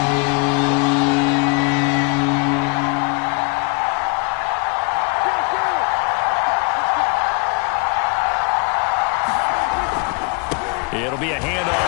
3. It'll be a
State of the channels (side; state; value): right; quieter; 32.5 dB